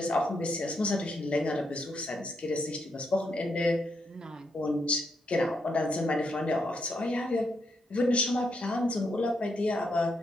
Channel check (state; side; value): normal; both; correlation 0.79